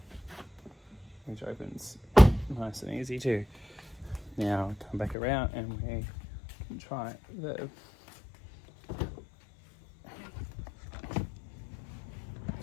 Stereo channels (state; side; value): drops out; right; at 5.2 s